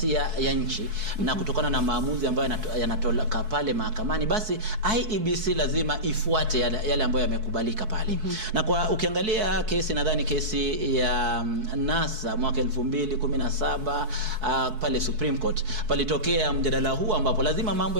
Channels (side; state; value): left; late; 4.6 ms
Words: ya nchi, na kutokana na maamuzi ambayo yanatoka pale mahakamani, basi IEBC lazima ifuate yale ambayo yamekubalika pale. Na kwa ukiangalia kesi, nadhani kesi ya NASA mwaka 2017 pale Supreme Court, palitokea mjadala huu ambapo lazima mambo